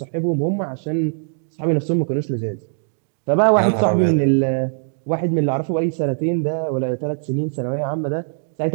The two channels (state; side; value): silent; left; digital silence